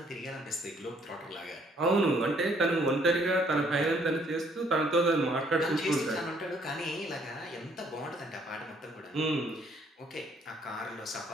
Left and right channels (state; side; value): normal; both; correlation 0.65